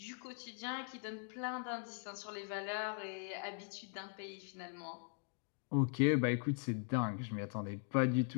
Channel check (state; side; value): silent; right; 51 dB below the other